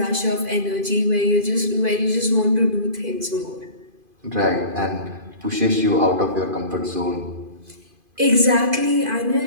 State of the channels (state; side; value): late; left; 2.5 ms